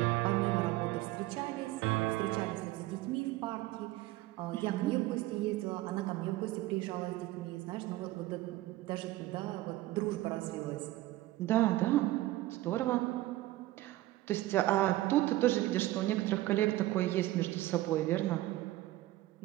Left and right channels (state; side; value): quieter; left; 16.8 dB